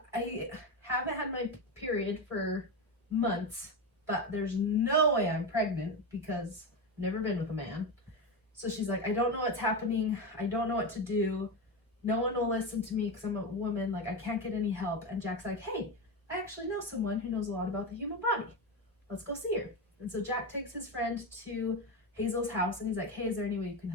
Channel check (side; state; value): both; normal; correlation 0.15